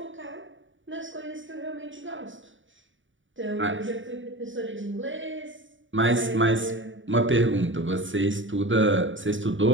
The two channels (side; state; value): left; late; 0.56 ms